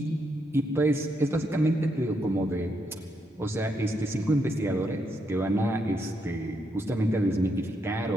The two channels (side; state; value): both; normal; correlation 0.79